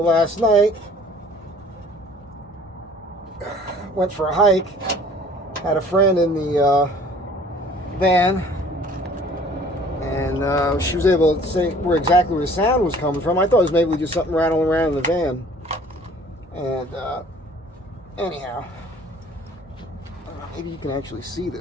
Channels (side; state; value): both; normal; correlation 0.52